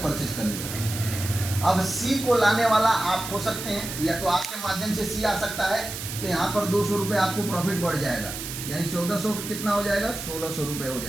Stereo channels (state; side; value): noise; right; hiss, 8 dB below the sound